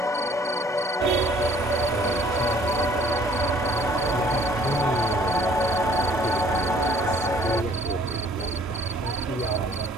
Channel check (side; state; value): both; normal; correlation 0.57